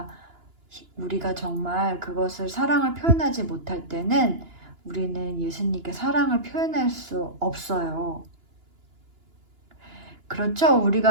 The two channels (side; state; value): left; late; 2.9 ms